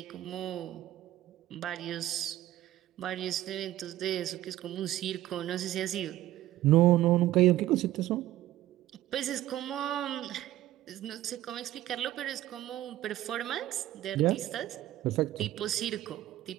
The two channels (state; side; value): quieter; left; 14.3 dB